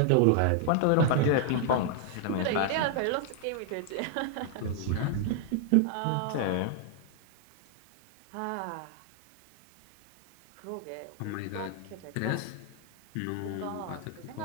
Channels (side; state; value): both; different; correlation 0.00